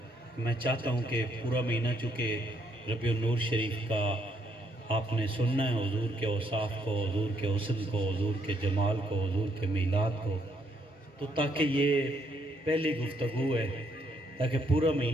میں چاہتا ہوں کہ پورا مہینہ چونکہ ربیع النور شریف کا آپ نے سننا ہے، حضور کے اوصاف کو، حضور کے حسن کو، حضور کے جمال کو، حضور کے میلاد کو، تو تاکہ یہ پہلی گفتگو ہے تاکہ پورا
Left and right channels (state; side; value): normal; both; correlation 0.72